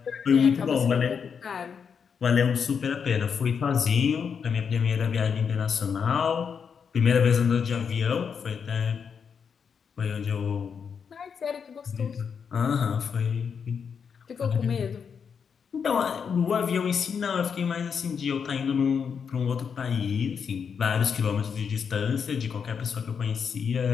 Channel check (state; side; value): quieter; right; 6.6 dB